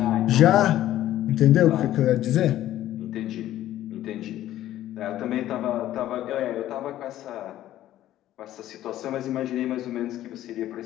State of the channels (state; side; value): quieter; right; 13.3 dB